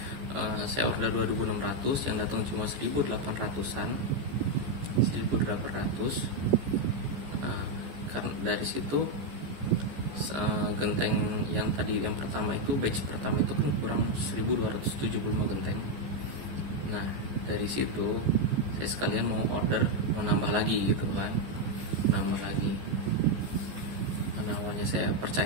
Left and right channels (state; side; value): late; left; 14 ms